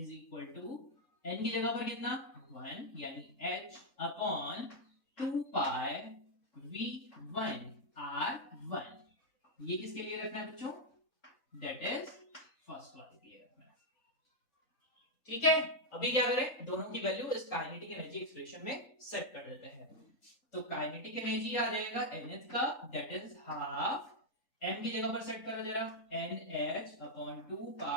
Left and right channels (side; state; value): right; late; 3.8 ms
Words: equal to n की जगह पर कितना 1 यानी h अपॉन 2 पाई v1 r1। ये किसके लिए रखना है बच्चों, दैट इज फर्स्ट वाले के लिए रखना है। ठीक है, अभी क्या करें, दोनों की वैल्यू इस काइनेटिक एनर्जी एक्सप्रेशन में सेट कर देते हैं। तो काइनेटिक एनर्जी आ जाएगा nth का, दैट इज हाफ, m की जगह पर सेट करो जरा, nh अपॉन 2